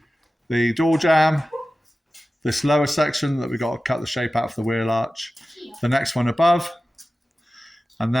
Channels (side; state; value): both; normal; correlation 0.95